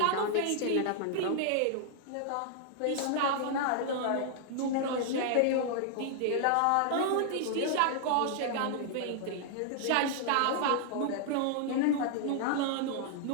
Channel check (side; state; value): both; different; correlation -0.01